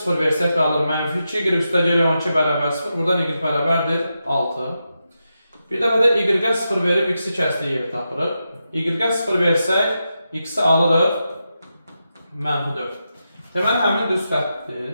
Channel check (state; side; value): inverted; both; correlation -0.88